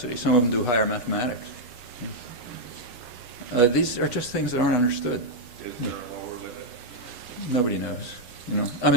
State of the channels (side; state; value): right; late; 8.1 ms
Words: Some of them do higher mathematics. These are just things that aren't understood. Is there a lower limit? Nobody knows. I